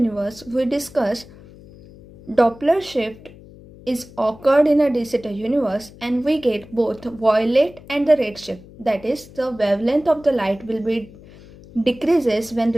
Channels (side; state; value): left; noise; hum, 21 dB below the sound